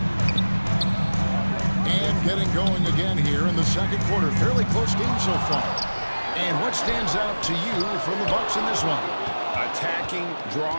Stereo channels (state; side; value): inverted; both; correlation -1.00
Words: And getting going again here in the second quarter. Fairly close game so far. And what stands out to you from the Bucks in this one? Attacking,